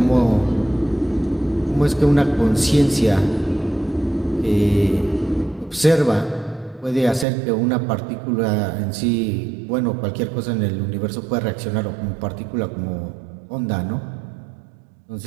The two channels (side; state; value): left; drops out; at 7.2 s